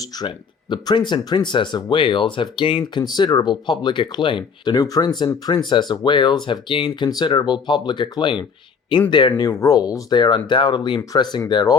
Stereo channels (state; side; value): quieter; right; 6.0 dB